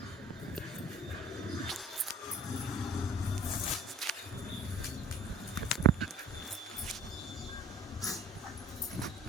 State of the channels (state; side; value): normal; both; correlation 0.50